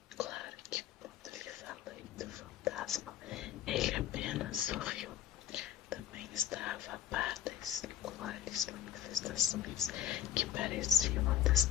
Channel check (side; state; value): right; quieter; 11.1 dB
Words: Claro que quando lhe falei do fantasma, ele apenas sorriu. Também estava a par das singulares manifestações que pareciam